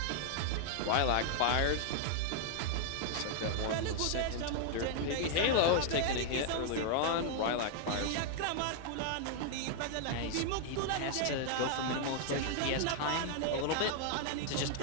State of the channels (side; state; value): both; different; correlation 0.00